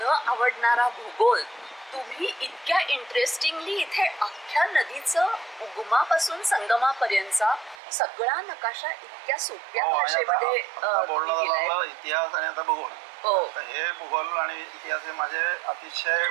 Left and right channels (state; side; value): drops out; left; at 7.8 s